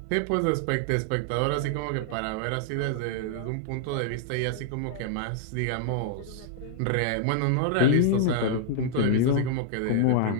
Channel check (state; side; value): different; both; correlation -0.01